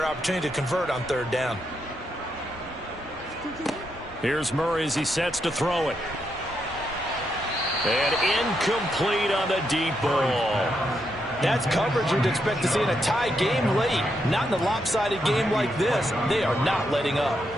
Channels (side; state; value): both; normal; correlation 0.81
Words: opportunity to convert on 3rd down. Here's Murray as he sets to throw it. And incomplete on the deep ball. That's coverage you'd expect to see in a tie game late. Not in a lopsided game like this. They are not letting up.